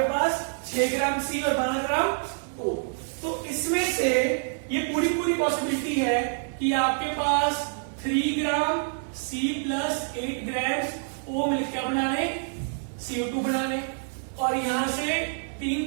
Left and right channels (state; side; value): silent; left; 60 dB below the other